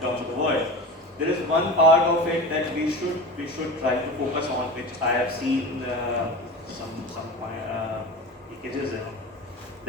terms of the world, there is one part of it that we should try to focus on, which I have seen some leakages in.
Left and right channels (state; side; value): normal; both; correlation 0.30